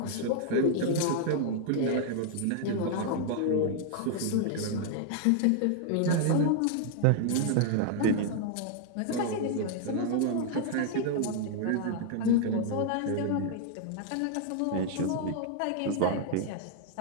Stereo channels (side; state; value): both; different; correlation 0.00